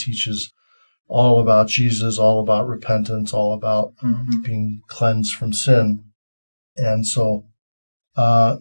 all about Jesus, all about repentance, all about being cleansed from sin. And so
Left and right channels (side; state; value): both; inverted; correlation -1.00